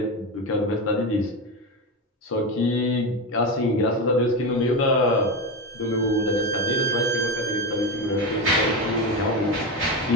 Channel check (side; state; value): both; normal; correlation 0.17